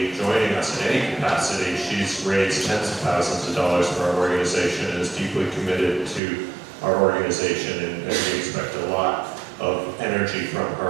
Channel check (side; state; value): left; drops out; at 6.2 s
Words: joining us in any capacity, she's raised tens of thousands of dollars for our organization and is deeply committed to our organization, and we expect a lot of energy from